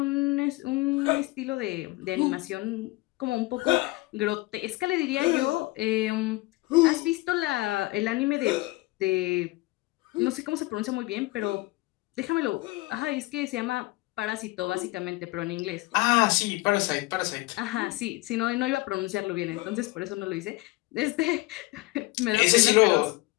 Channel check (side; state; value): right; quieter; 21.7 dB